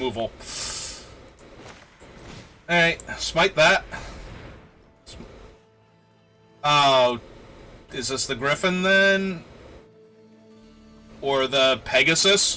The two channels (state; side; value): identical; both; correlation 1.00